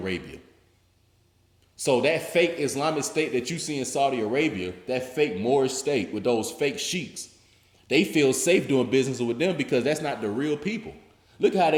So that fake Islamic state that you see in Saudi Arabia, that fake Moorish state with those fake sheiks, they feel safe doing business with them because that's not the real people. Look how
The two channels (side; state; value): both; identical; correlation 1.00